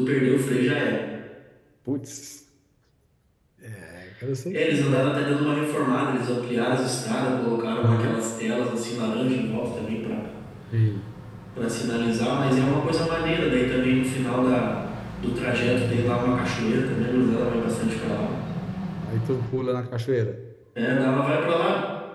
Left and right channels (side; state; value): both; identical; correlation 1.00